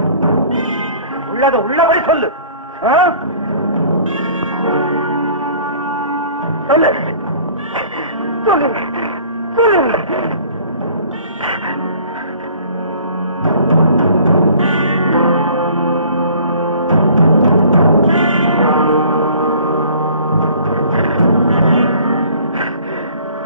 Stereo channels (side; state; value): both; inverted; correlation -0.51